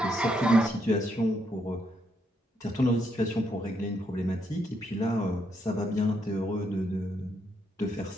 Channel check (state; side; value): normal; both; correlation 0.76